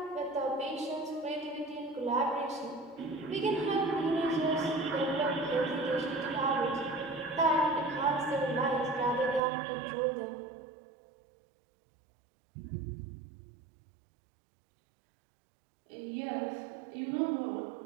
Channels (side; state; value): left; drops out; at 9.4 s